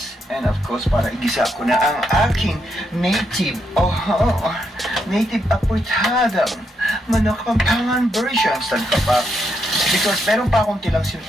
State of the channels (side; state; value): both; normal; correlation 0.79